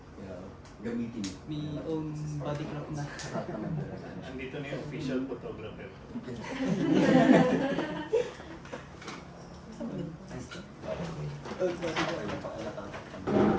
Gamitin. May own body clock na. Andito na yung official photographer. Old body clock.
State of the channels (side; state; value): both; identical; correlation 1.00